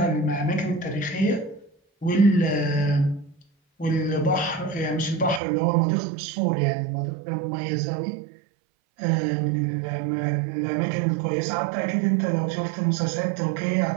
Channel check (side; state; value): left; drops out; at 5.4 s